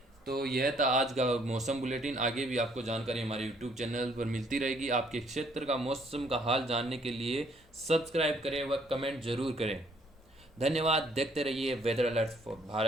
तो यह था आज का मौसम बुलेटिन। आगे भी आपको जानकारी हमारे यूट्यूब चैनल पर मिलती रहेगी। आपके क्षेत्र का मौसम का हाल जानने के लिए सब्सक्राइब करें व कमेंट जरूर करें। धन्यवाद। देखते रहिए weather alert for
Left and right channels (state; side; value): normal; both; correlation 0.65